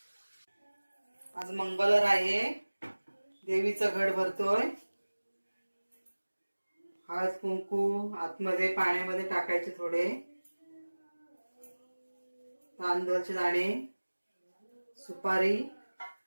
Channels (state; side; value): inverted; both; correlation -1.00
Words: आज मंगळवार आहे. देवीचं घट भरतोय. हळद कुंकू आतमध्ये पाण्यामध्ये टाकायचे, थोडे तांदळाचे दाणे, सुपारी,